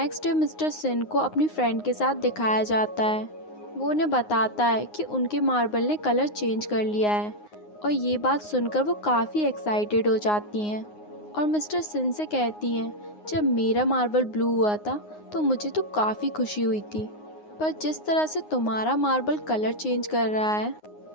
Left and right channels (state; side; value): late; right; 9.6 ms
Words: डे मिस्टर सिन को अपनी फ्रेंड के साथ दिखाया जाता है। वो उन्हें बताता है कि उनके मार्बल ने कलर चेंज कर लिया है, और ये बात सुनकर वो काफ़ी एक्साइटेड हो जाती हैं और मिस्टर सिन से कहती हैं, जब मेरा मार्बल ब्लू हुआ था तो मुझे तो काफ़ी खुशी हुई थी, पर जिस तरह से तुम्हारा मार्बल कलर चेंज कर रहा है